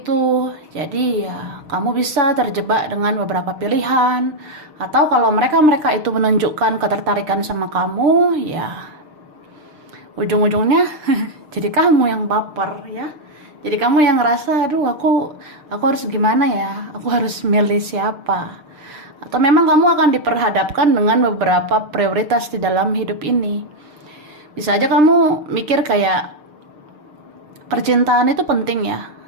Jadi ya kamu bisa terjebak dengan beberapa pilihan, atau kalau mereka itu menunjukkan ketertarikan sama kamu, ya ujung-ujungnya jadi kamu yang baper ya. Jadi kamu yang ngerasa, aduh aku harus gimana ya, aku harus milih siapa. Atau memang kamu akan diperhadapkan dengan beberapa prioritas di dalam hidup ini. Bisa aja kamu mikir kayak percintaan itu penting ya,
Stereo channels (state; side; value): late; left; 6.6 ms